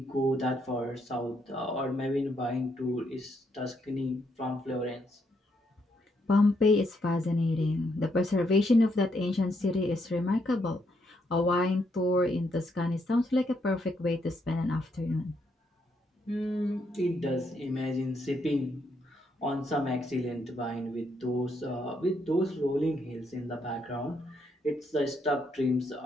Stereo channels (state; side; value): normal; both; correlation 0.76